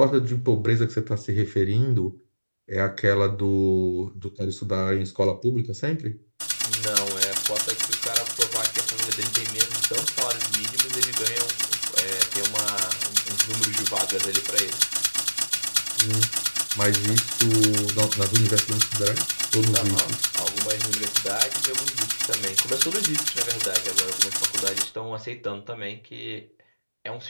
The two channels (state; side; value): inverted; both; correlation -1.00